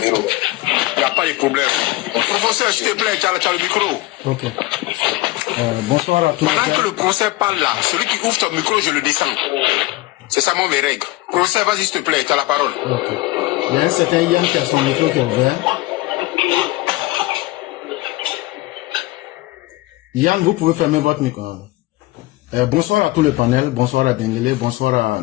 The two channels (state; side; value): quieter; right; 18.9 dB